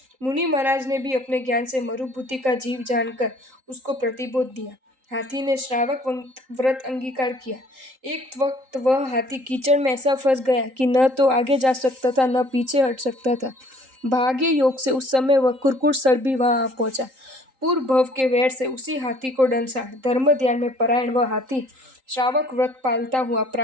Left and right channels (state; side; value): late; left; 3.8 ms